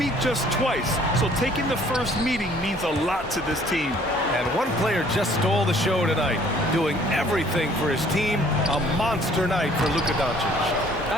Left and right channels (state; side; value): normal; both; correlation 0.58